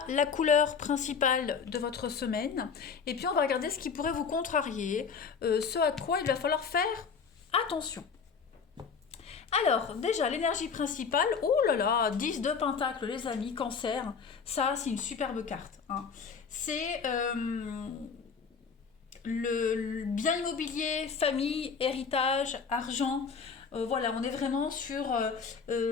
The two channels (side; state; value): right; quieter; 5.8 dB